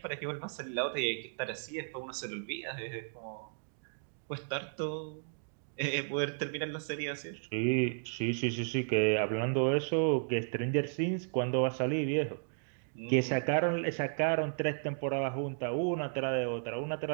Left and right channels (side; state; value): left; silent; digital silence